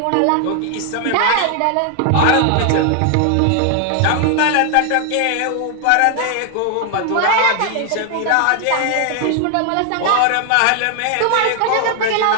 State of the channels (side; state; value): both; different; correlation 0.00